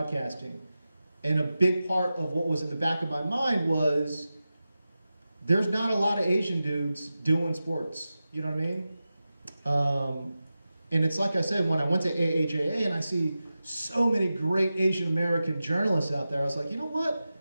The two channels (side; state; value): both; inverted; correlation -0.93